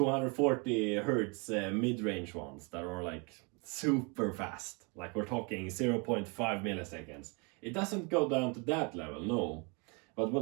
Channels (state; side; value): quieter; left; 32.1 dB